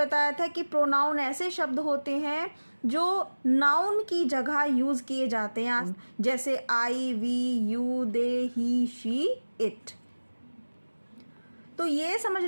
था कि प्रोनाउन ऐसे शब्द होते हैं जो नाउन की जगह यूज़ किए जाते हैं, जैसे I, we, you, they, he, she, it. तो ये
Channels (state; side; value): inverted; both; correlation -1.00